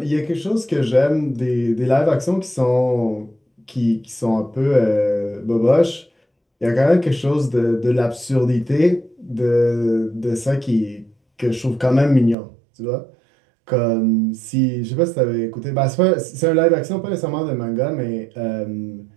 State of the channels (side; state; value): left; drops out; at 12.4 s